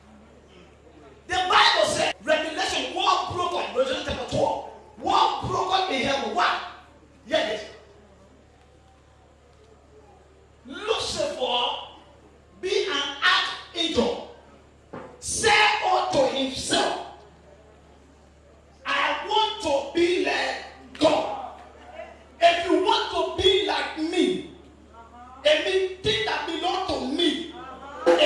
The Bible says, Revelation, war broken, Revelation chapter 12, war broken in heaven. What? Hear this.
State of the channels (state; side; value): identical; both; correlation 1.00